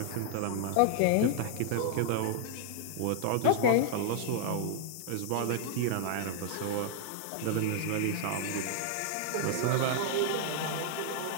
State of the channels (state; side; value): different; both; correlation 0.00